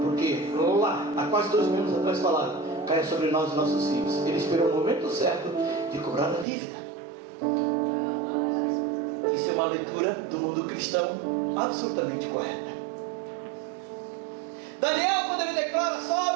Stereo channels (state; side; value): drops out; left; at 6.5 s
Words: lá, há quase 2 mil anos atrás falaram: caia sobre nós e nossos filhos. Ele esperou o momento certo de cobrar a dívida. Isso é uma leitura do mundo cristão absolutamente correta. Daniel, quando ele declara: Saul,